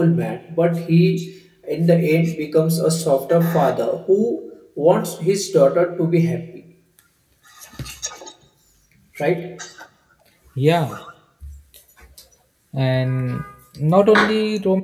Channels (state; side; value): identical; both; correlation 1.00